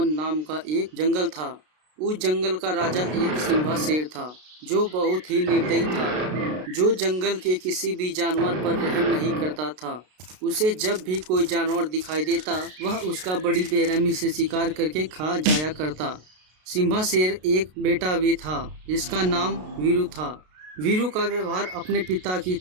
नाम का एक जंगल था। उस जंगल का राजा एक सिंहा शेर था, जो बहुत ही निर्दयी था, जो जंगल के किसी भी जानवर पर रहम नहीं करता था। उसे जब भी कोई जानवर दिखाई देता, वह उसका बड़ी बेरहमी से शिकार करके खा जाया करता। सिंहा शेर एक बेटा भी था, जिसका नाम वीरू था। वीरू का व्यवहार अपने पिता की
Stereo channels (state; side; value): late; left; 33 ms